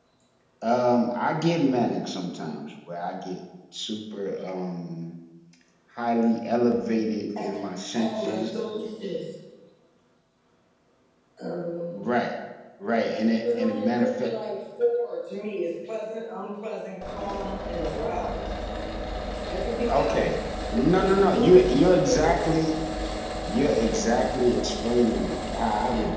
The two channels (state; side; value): identical; both; correlation 1.00